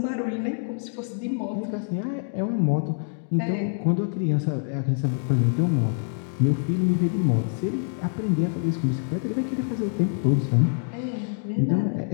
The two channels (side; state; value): right; silent; 61 dB below the other